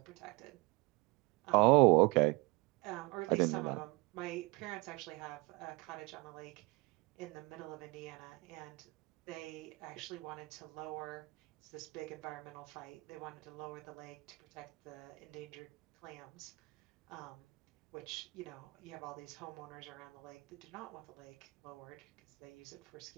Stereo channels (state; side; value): quieter; left; 25.6 dB